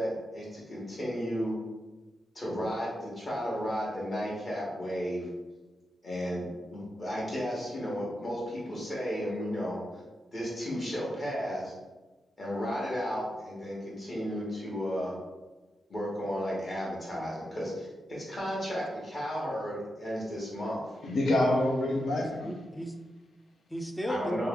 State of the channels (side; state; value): both; normal; correlation 0.87